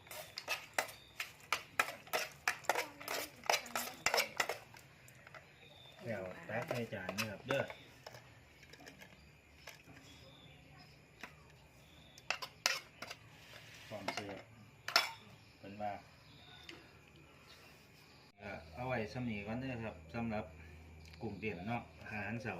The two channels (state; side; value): identical; both; correlation 1.00